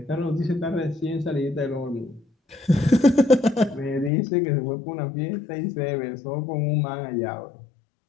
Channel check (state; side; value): drops out; right; at 4.1 s